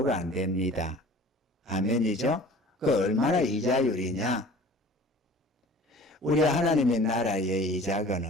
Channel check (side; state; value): both; normal; correlation 0.45